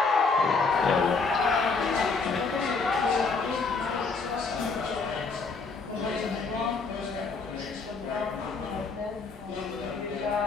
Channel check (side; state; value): right; quieter; 4.4 dB